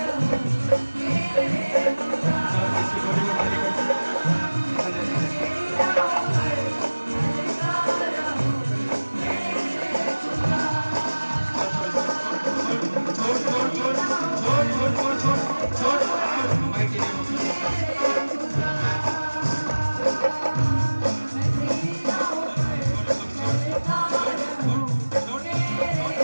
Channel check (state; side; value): inverted; both; correlation -1.00